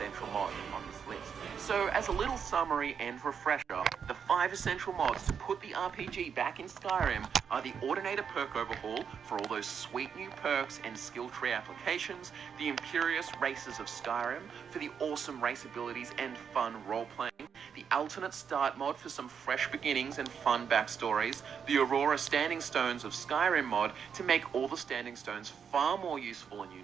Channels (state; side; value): quieter; left; 7.1 dB